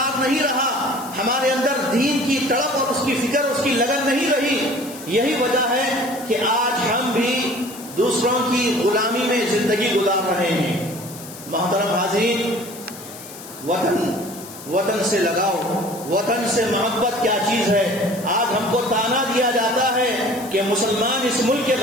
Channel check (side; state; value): left; noise; hiss, 15 dB below the sound